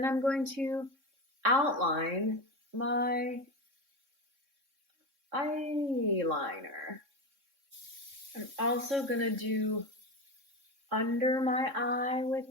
I'm going to outline my eyeliner. I'm also gonna do under my eye with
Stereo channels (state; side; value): late; left; 3.6 ms